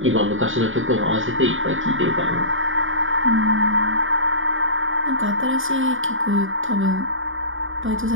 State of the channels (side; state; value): left; late; 0.58 ms